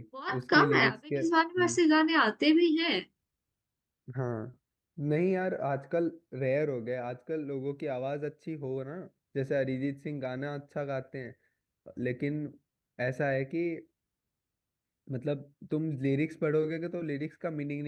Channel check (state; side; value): identical; both; correlation 1.00